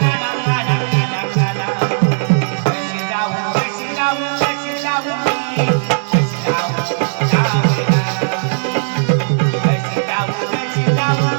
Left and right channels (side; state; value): left; silent; digital silence